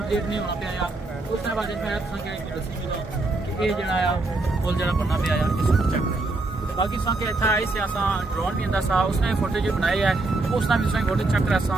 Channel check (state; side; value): quieter; left; 3.1 dB